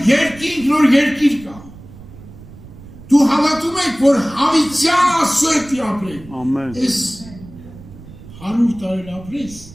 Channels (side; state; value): right; noise; rumble, 18 dB below the sound